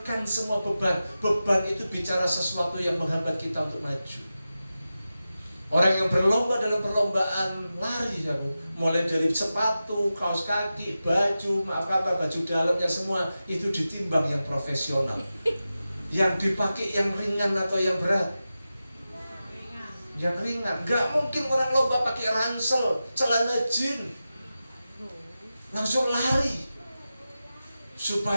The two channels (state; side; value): inverted; both; correlation -0.93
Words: semua beban. Beban itu bicara sesuatu yang menghambat kita untuk maju. Orang yang berlomba dalam perlombaan lari, mulai dari sepatu, kaos kaki, baju, baju dalamnya semua itu ditimbang yang profesional. Yang dipakai yang ringan atau yang berat? Yang ringan. Gak mungkin orang lomba pakai ransel, celana jeans, langsung lari